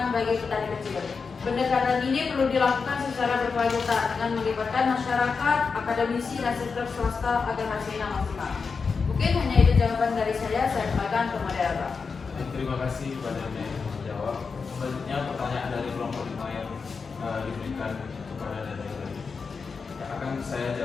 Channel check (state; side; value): quieter; right; 5.1 dB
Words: bagi petani kecil. Pendekatan ini perlu dilakukan secara berkelanjutan dengan melibatkan masyarakat, akademisi, dan sektor swasta agar hasilnya maksimal. Mungkin hanya itu jawaban dari saya kembalikan ke moderator. Terima kasih kepada yang menjawab. Selanjutnya pertanyaan dari kelompok 5 yang diberikan kepada dari yang akan saya